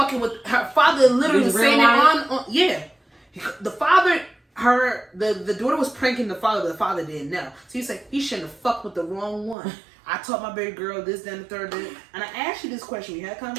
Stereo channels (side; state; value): left; drops out; at 9.6 s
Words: with her father. Literally was saying it on yeah. The father. The daughter was pranking the father, but the father didn't know. So he's like, he shouldn't have fucked with the wrong one. I taught my baby girl this, then the third, and I asked you this question. We had a